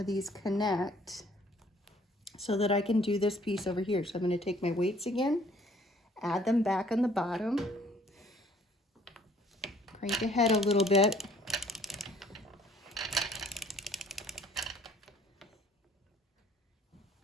these connect so that I can do this piece over here. So I'm going to take my weights again, add them back on the bottom, crank ahead a little bit.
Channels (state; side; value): normal; both; correlation 0.58